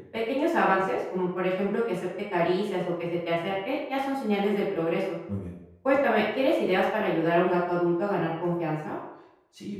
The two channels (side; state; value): both; identical; correlation 1.00